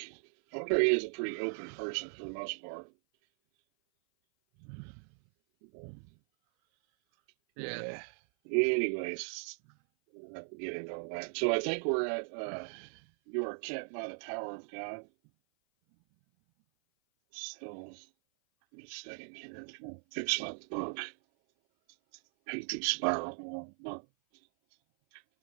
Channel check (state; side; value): silent; left; 53 dB below the other